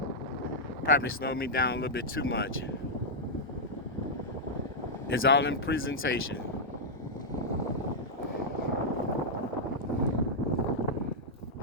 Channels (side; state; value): both; normal; correlation -0.07